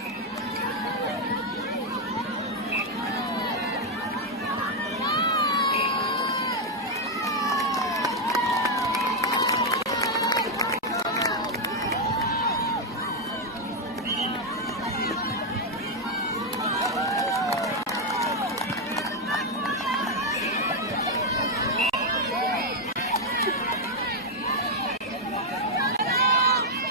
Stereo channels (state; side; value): normal; both; correlation 0.01